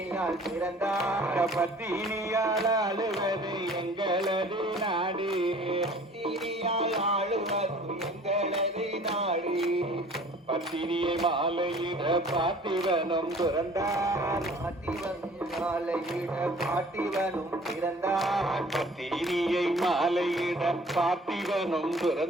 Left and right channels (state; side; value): normal; both; correlation 0.50